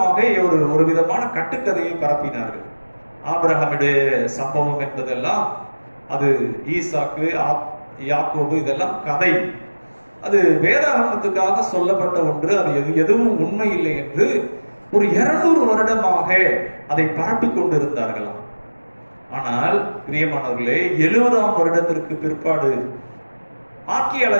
ஒரு விதமான கட்டுக்கதையை பரப்பினார்கள். ஆபிரகாமுடைய சம்பவம் என்பதெல்லாம் அது ஈசாக்கு யாக்கோபு இதெல்லாம் கதை, அது வேதாகமத்துக்காக சொல்லப்பட்ட ஒன்று, அது எதுவும் உண்மை இல்லை என்று ஒரு 200 வருடமாக அதை பரப்பிக் கொண்டிருந்தார்களாம். ஆனால் பிரியமானவர்களே, 70ஆம் வருடத்திற்கு பிற்பாடு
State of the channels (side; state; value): both; inverted; correlation -1.00